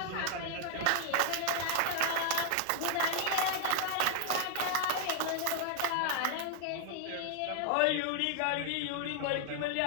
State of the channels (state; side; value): different; both; correlation 0.00